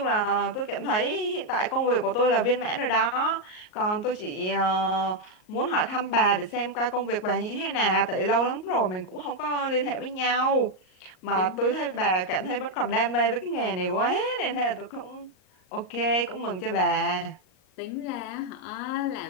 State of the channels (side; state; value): right; late; 38 ms